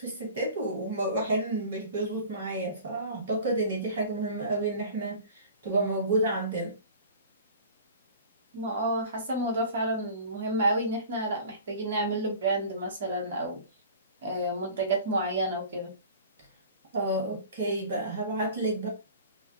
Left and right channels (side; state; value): both; inverted; correlation -0.42